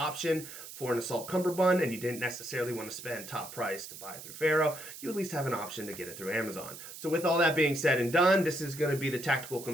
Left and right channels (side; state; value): right; noise; hiss, 13 dB below the sound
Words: for an assault cummerbund and you didn't necessarily want to spend top price to buy it through Ferro, you at least have an option to get it through Amazon. So with all that being said and done, this is going to be the tactical